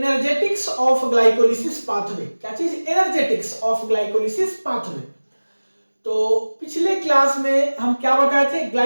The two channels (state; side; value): inverted; both; correlation -1.00